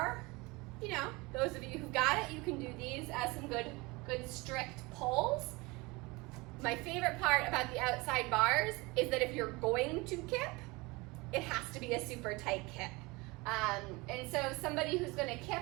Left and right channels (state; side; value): quieter; left; 24.3 dB